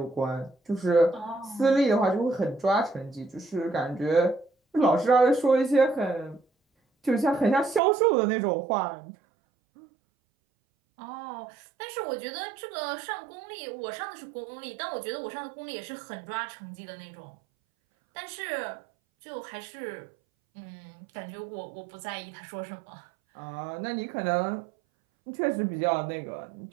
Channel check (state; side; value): drops out; left; at 7.8 s